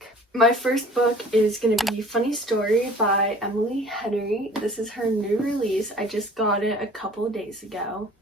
My first book is gonna be Funny Story by Emily Henry. This is her new release. I just got it a couple of days ago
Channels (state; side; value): normal; both; correlation 0.48